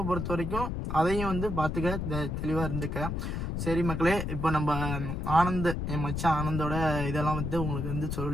பொறுத்த வரைக்கும் அதையும் வந்து பாத்துக்க, தெளிவா இருந்துக்க. சரி மக்களே, இப்போ நம்ம ஆனந்த், என் மச்சான் ஆனந்தோட இதெல்லாம் வந்து உங்களுக்கு வந்து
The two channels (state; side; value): noise; left; rumble, 3 dB below the sound